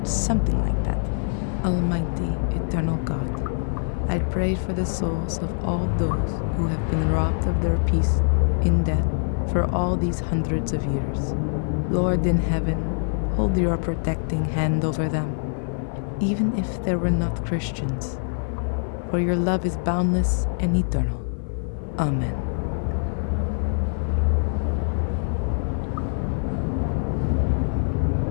something like that. Almighty, eternal God, I pray for the souls of all those who have been robbed of their peace in death for all these hundreds of years. Lord in heaven, hold your protecting hand over them, even if they were not Christians, for your love is boundless and eternal. Amen.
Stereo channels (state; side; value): silent; right; 59 dB below the other